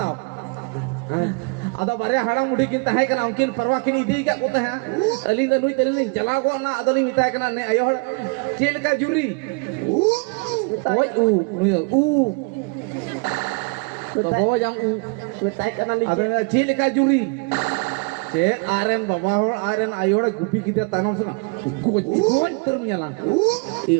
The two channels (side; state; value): left; quieter; 32.5 dB